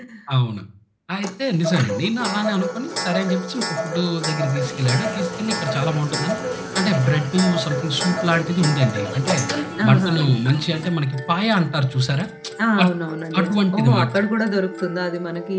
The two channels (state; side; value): identical; both; correlation 1.00